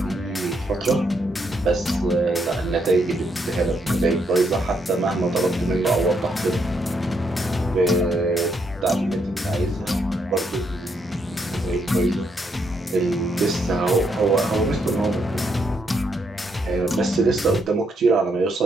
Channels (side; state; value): both; normal; correlation 0.76